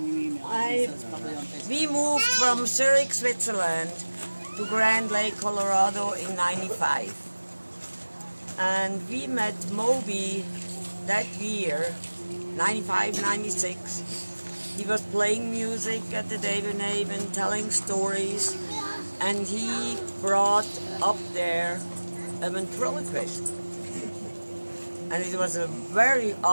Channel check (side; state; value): both; inverted; correlation -1.00